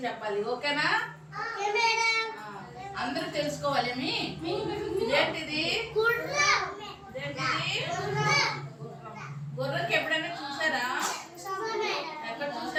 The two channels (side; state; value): both; identical; correlation 1.00